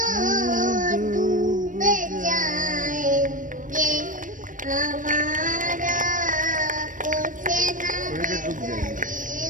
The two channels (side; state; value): left; late; 0.38 ms